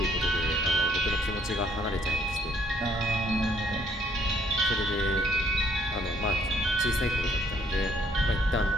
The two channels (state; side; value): normal; both; correlation 0.66